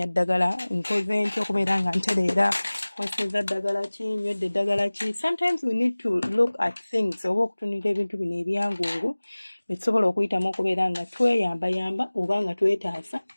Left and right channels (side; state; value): both; inverted; correlation -1.00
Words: ddagala nkoze ntya okubeera nga ntereera kweseza ddagala ki nywedde ddagala ki. Sometimes we need to look at things oba okutunira ebintu bino ebyangungu betusobola okuyitamu okubeera nga tweyambayamba oba nga twetaasa